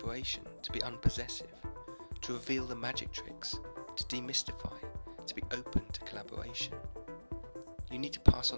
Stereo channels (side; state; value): both; inverted; correlation -1.00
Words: to be unpossessive, to reveal the magic tricks, to demystify, to be open to collaboration. You need to pass